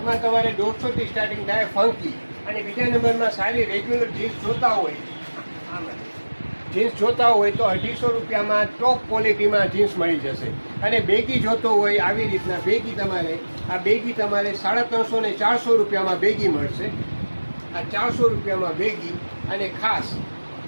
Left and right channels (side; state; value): both; inverted; correlation -1.00